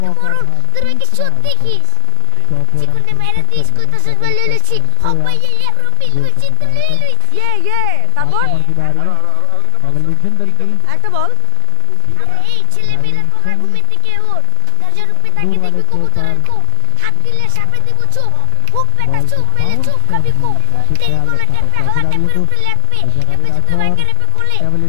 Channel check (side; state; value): both; different; correlation 0.00